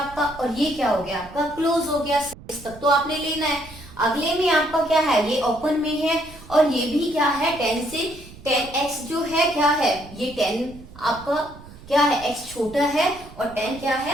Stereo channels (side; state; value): right; noise; rumble, 19 dB below the sound